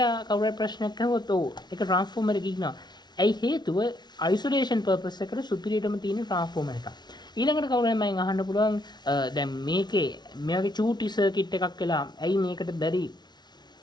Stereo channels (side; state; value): right; late; 0.20 ms